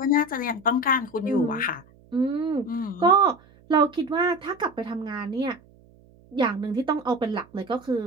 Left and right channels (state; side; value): noise; right; hum, 27 dB below the sound